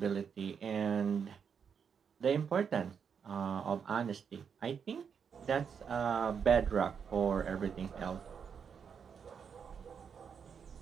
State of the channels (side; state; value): left; quieter; 6.9 dB